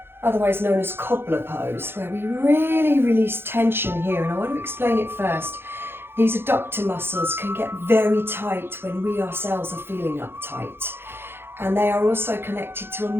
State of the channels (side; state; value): left; late; 0.11 ms